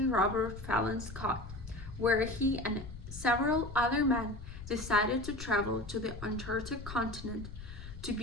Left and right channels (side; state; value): left; noise; rumble, 11 dB below the sound